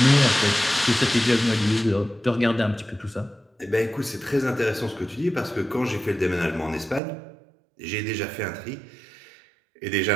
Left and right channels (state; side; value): drops out; left; at 7.0 s